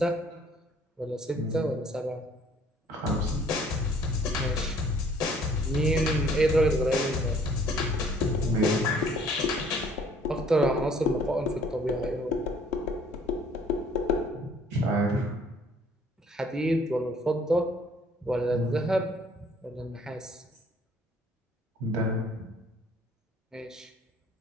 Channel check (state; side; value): normal; both; correlation 0.58